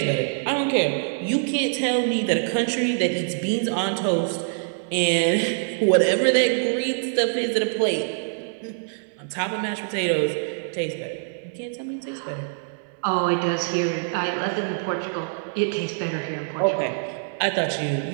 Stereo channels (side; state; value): left; silent; digital silence